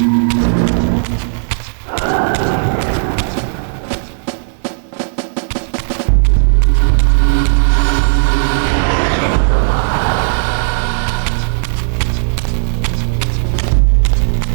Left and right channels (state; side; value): silent; left; digital silence